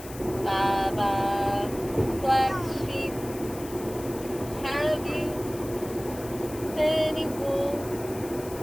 Baba Black Sheep, have you any wool?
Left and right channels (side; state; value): left; noise; hiss, 16 dB below the sound